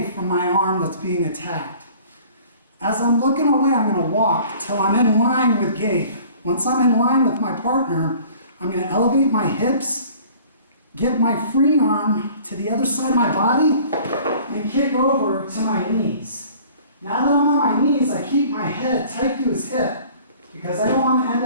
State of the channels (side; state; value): both; inverted; correlation -0.50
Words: from my arm that's being attacked. As I'm looking away, I'm going to walk till I'm in line with Gabe. Once I'm in line with my partner, I'm going to elevate my hips, get my free arm to the other side of my body, and kick over to my knees. Now that I'm on my knees, I keep my head tight to his hip because I don't want to end